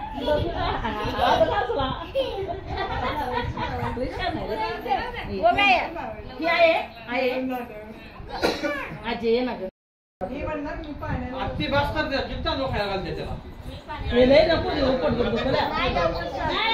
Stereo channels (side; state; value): both; identical; correlation 1.00